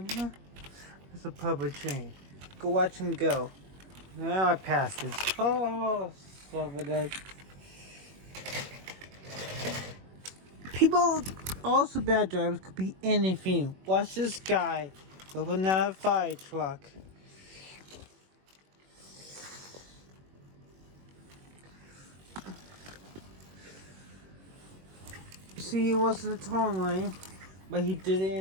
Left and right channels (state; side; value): late; left; 21 ms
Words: here. It's a public train. Go watch him go. Now I passed this. Oh, son of a. People, also bad drivers, could be anything. Watch this guy with another fire truck. See, he wasn't a turn lane, but he did it